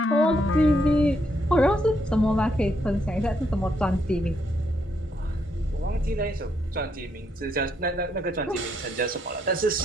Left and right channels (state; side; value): normal; both; correlation 0.76